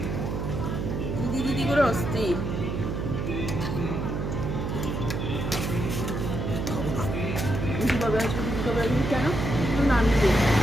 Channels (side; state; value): right; noise; hum, 2 dB below the sound